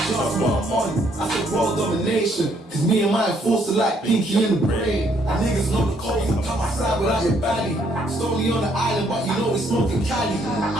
what I'm on, I said world domination. Cause me and my enforcer like Pinky in the brain. And niggas know the code, you come outside without your belly. Stony on the island, but you know we smoking Cali.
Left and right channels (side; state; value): both; normal; correlation 0.69